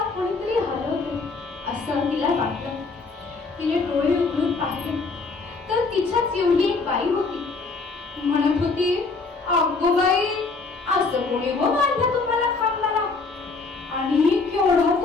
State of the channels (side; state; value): right; quieter; 4.1 dB